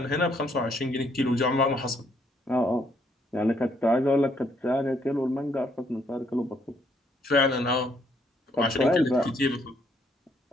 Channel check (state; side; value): normal; both; correlation 0.70